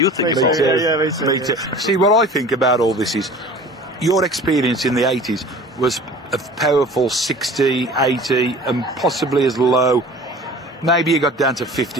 think? Me too. Me too. See, what I think about all this is your experience in the 80s was a powerful 60, 80 and possibly as low. Maybe you got down to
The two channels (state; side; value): normal; both; correlation 0.42